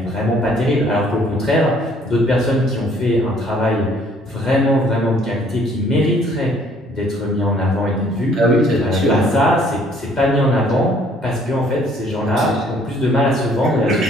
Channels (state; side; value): normal; both; correlation 0.60